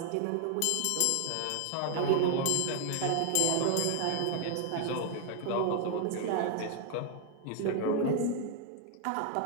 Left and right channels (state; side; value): different; both; correlation 0.00